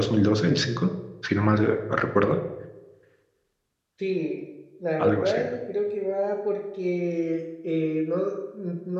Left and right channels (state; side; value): identical; both; correlation 1.00